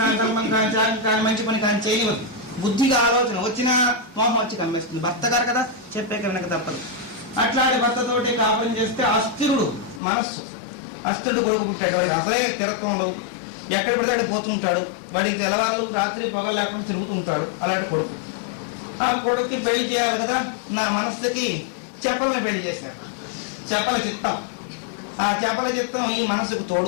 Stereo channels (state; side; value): drops out; right; at 10.0 s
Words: కానీ ధర్మం కానీ త్యాగం కానీ మంచి పని కానీ చేయనివ్వదు. బుద్ధిగా ఆలోచన వచ్చినా మోహం వచ్చి కమ్మేస్తుంది. భర్త గారు కదా చెప్పే కనుక తప్పదు. అట్లాంటి భర్తతోటి కాపురం చేస్తే అస్థిరుడు మనస్సు, అస్థిరుడు కొడుకు పుట్టాడు. వాడికి అసలే స్థిరత్వం ఉండదు, ఎక్కడ పడితే అక్కడ పోతుంటాడు. వాడికి తెల్లవాళ్ళు రాత్రి పగలు లేకుండా తిరుగుతుంటాడు. అలాంటి కొడుకు. ఆ కొడుకుకి పెళ్లి చేయాలి కదా, నా మనస్సుకి చెప్పలని పెళ్లి చేశాడు. చెప్పల చిత్తం. ఆ చెప్పల చిత్తం ఈ మనసుకు